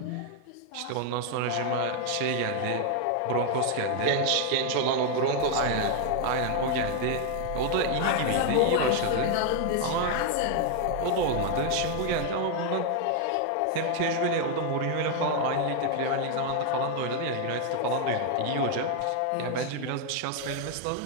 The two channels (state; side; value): different; both; correlation 0.00